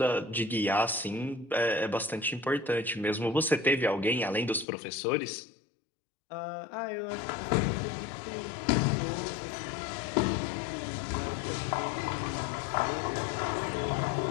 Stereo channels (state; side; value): drops out; right; at 4.7 s